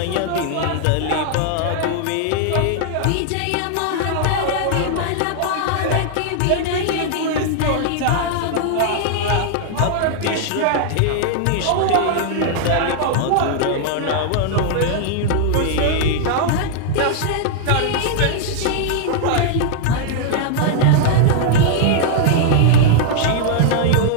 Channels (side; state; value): both; different; correlation -0.01